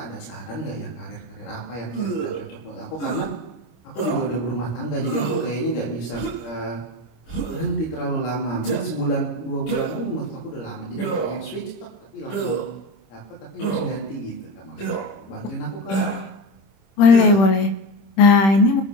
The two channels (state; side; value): late; right; 26 ms